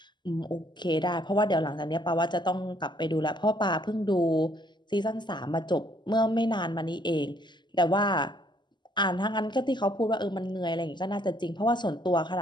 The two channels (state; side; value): late; right; 0.21 ms